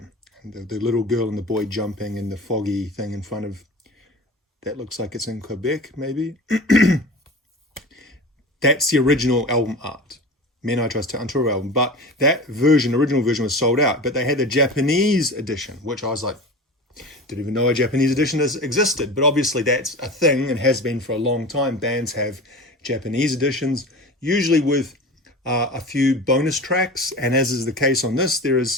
And the little girl and the boy jumping in the foggy thing in front of, that looks like it's in Quebec, maybe. That's the original album art. Men I Trust, Untourable album. But that version, original version, was sold out. But they had the Japanese edition, which I was like, didn't even know a Japanese edition existed. But obviously that's a thing and has been for a long time. Bands have Japanese editions, usually with a few bonus tracks, and as is the case on this, there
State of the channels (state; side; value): normal; both; correlation 0.33